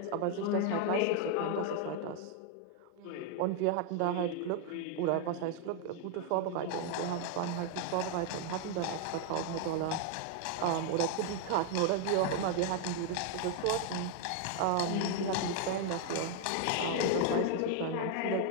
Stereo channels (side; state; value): both; different; correlation 0.00